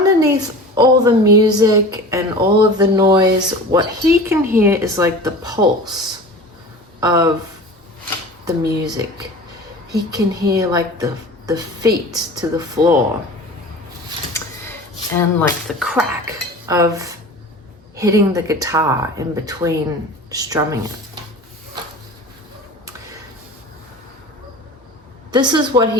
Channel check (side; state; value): both; normal; correlation 0.36